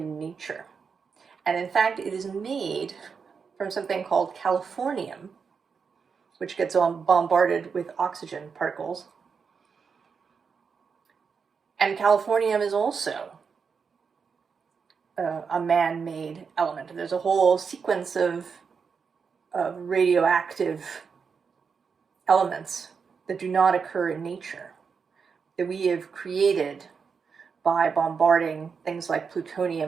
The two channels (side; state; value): left; quieter; 5.8 dB